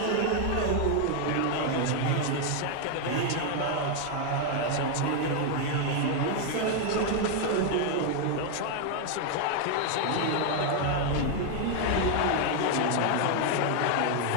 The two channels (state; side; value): different; both; correlation 0.00